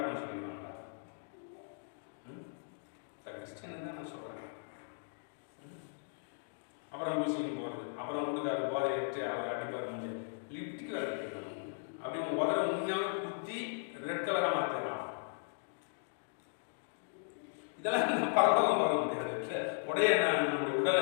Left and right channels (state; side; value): silent; right; digital silence